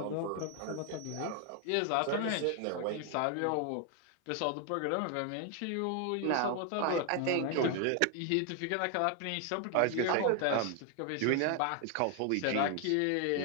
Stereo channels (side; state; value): both; different; correlation 0.01